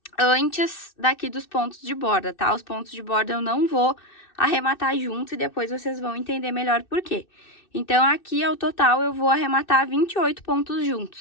antes daqui dos pontos de borda, tá? Os pontos de borda eu não vou arrematar junto e depois vocês vão entender melhor por quê. Então, aqui, ao total, eu vou arrematar 28 pontos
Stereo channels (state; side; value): late; right; 2.6 ms